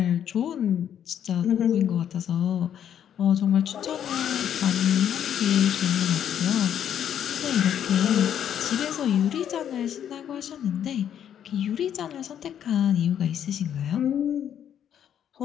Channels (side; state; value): right; quieter; 9.5 dB